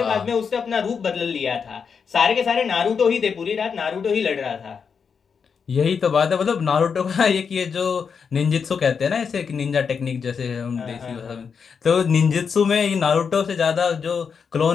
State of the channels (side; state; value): right; quieter; 6.2 dB